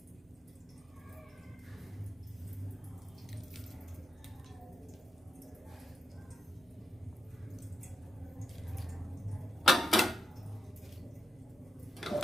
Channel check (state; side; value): normal; both; correlation 0.84